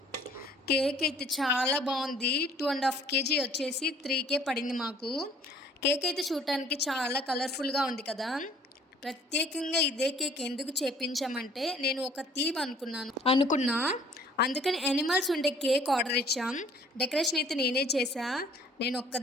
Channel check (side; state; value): both; normal; correlation 0.56